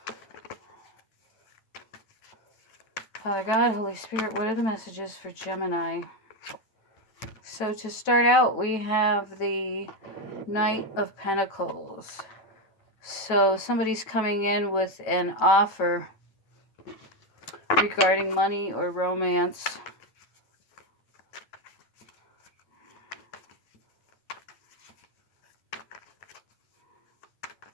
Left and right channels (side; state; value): right; late; 9.1 ms